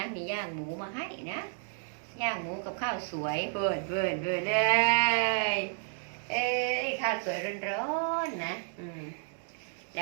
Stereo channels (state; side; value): silent; left; digital silence